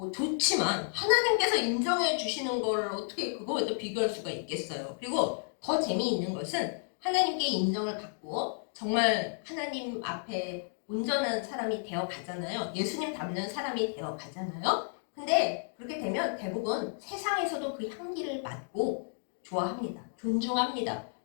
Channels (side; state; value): right; silent; digital silence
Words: 좋지만 하나님께서 인정해 주시는 거를 어떻게 그거에 비교할 수가 있겠어요. 그리고 더 재미있는 것은 하나님께 인정을 받고 정말 하나님 앞에 온전한 사람이 되어 가잖아요. 예수님 닮는 사람이 되어 가잖아요. 근데 그렇게 되면 대부분 세상에서도 그 향기를 맡고 좋아합니다. 존중합니다.